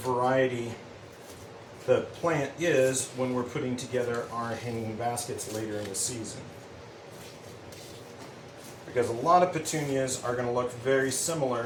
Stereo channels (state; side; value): identical; both; correlation 1.00